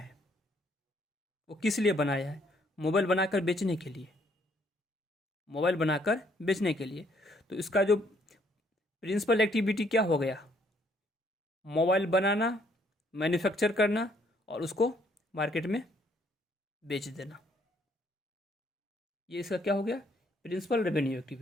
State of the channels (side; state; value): both; normal; correlation 0.67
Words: वो किस लिए बनाया है, मोबाइल बनाकर बेचने के लिए, मोबाइल बनाकर बेचने के लिए। तो इसका जो प्रिंसिपल एक्टिविटी क्या हो गया, मोबाइल बनाना, मैन्युफैक्चर करना और उसको मार्केट में बेच देना। ये इसका क्या हो गया, प्रिंसिपल रेवेन्यू